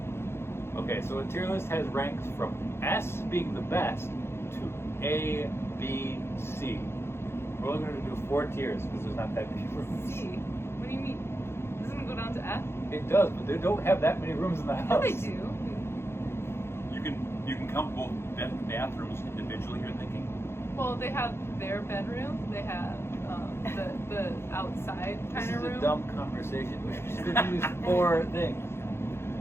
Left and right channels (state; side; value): late; right; 0.12 ms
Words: Okay, so a tier list has ranks from S being the best to A, B, C. We're only going to do 4 tiers because there's not that many rooms. C. What do you mean? Doesn't it go down to F? It does, but they don't have that many rooms in the Yeah, house. they do. You can count both bathrooms individually, you're thinking? Well, they have their bedroom. They have the outside This kind is of a room. dumb conversation. We should just use 4 things.